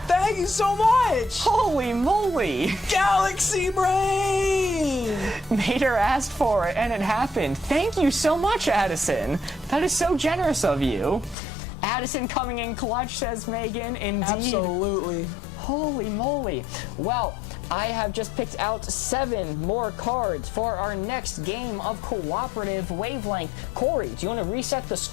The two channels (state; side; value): drops out; right; at 11.4 s